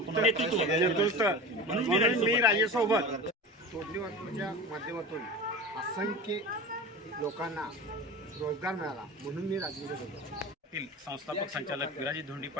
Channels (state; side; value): normal; both; correlation 0.31